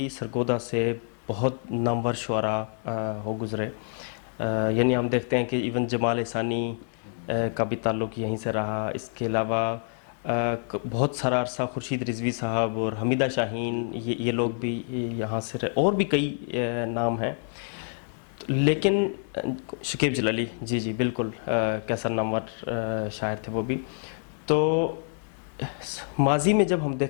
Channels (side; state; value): right; silent; 60 dB below the other